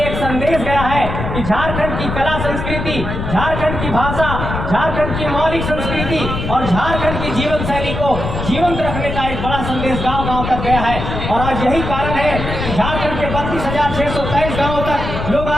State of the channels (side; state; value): left; noise; rumble, 4 dB below the sound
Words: एक संदेश गया है कि झारखंड की कला संस्कृति, झारखंड की भाषा, झारखंड की मौलिक संस्कृति और झारखंड की जीवन शैली को जीवंत रखने का एक बड़ा संदेश गांव गांव तक गया है। और आज यही कारण है कि झारखंड के 32,623 गांवों तक लोग